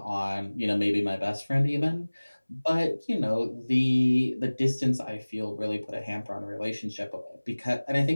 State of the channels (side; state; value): both; inverted; correlation -1.00